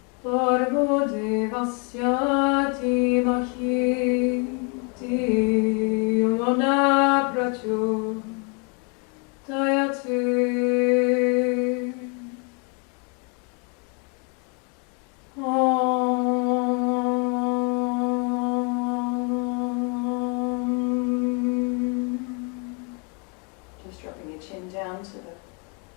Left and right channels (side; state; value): right; quieter; 33.7 dB